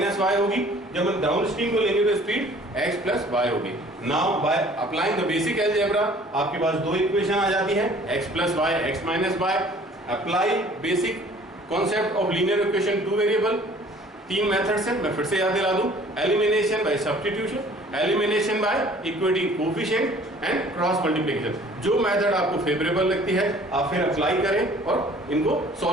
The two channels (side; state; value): both; normal; correlation 0.52